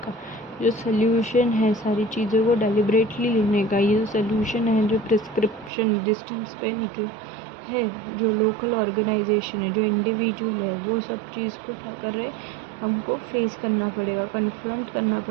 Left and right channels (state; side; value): drops out; left; at 5.7 s